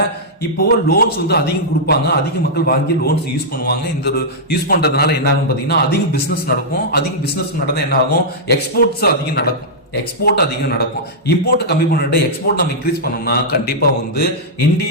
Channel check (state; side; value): normal; both; correlation -0.09